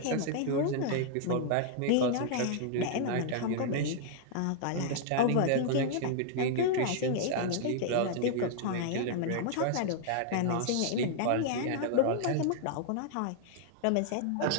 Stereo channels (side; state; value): both; different; correlation -0.01